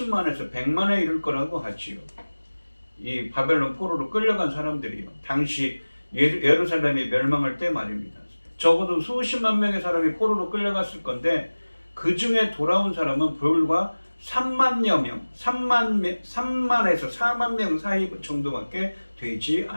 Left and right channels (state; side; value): inverted; both; correlation -1.00